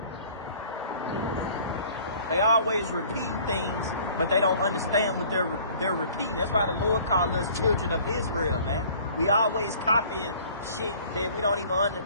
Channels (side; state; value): both; inverted; correlation -0.52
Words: They always repeat things, but they don't understand what they're repeating. That's why the Lord called us children of Israel, man. We always copying shit that we don't even